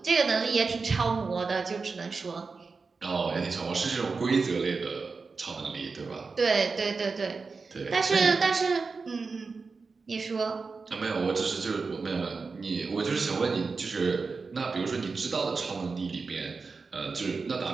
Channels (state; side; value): quieter; left; 4.5 dB